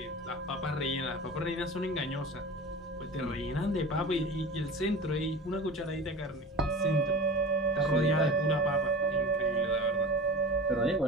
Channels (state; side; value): normal; both; correlation 0.34